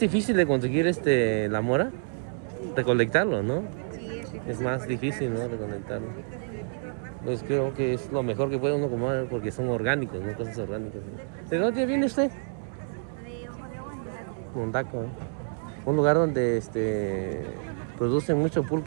difícil de conseguir la mora, recolectarlo, ¿no? Sí, es difícil. Es más difícil, ¿no? Recolectarlo. Pues creo que es lo mejor que puede uno comer porque son orgánicos, ¿no? Cosas orgánicas. ¿De dónde viene usted? De Ojo de Agua, Mondaco, ¿eh? Un lugar donde producen mucho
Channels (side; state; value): left; silent; digital silence